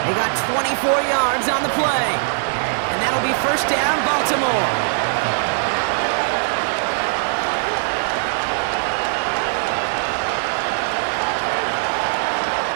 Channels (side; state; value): left; silent; digital silence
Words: They got 24 yards on the play. And that'll be 1st down, Baltimore.